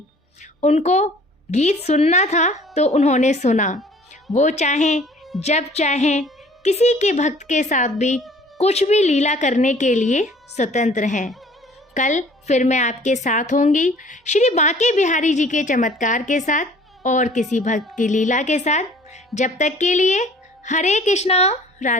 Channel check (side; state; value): both; normal; correlation 0.52